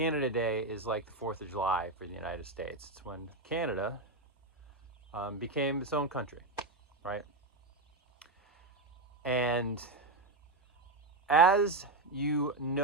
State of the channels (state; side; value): quieter; left; 3.1 dB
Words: Day is like the 4th of July for the United States. It's when Canada became its own country, right? And as you